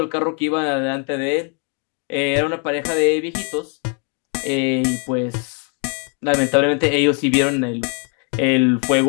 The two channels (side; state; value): right; quieter; 38.2 dB